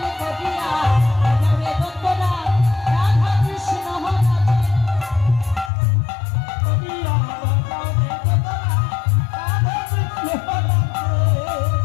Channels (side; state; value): right; drops out; at 5.7 s